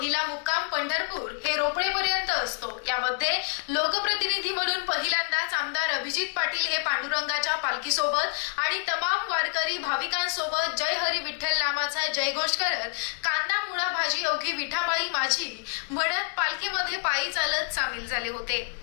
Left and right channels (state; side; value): silent; right; digital silence